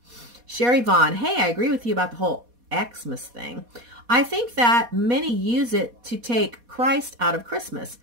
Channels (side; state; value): left; late; 4.2 ms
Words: Sherry Vaughn, hey, I agree with you about the whole Xmas thing. I think that many use it to take Christ out of Christmas.